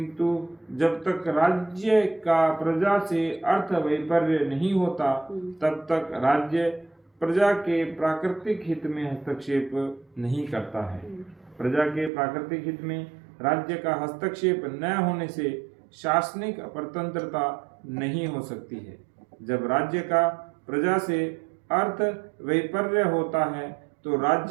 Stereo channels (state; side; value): drops out; left; at 12.1 s